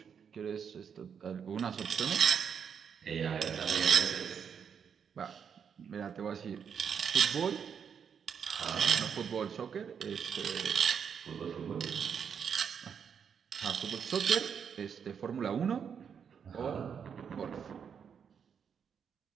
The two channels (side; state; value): left; quieter; 7.2 dB